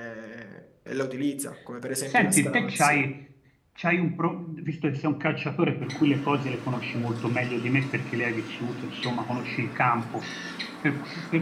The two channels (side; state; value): both; identical; correlation 1.00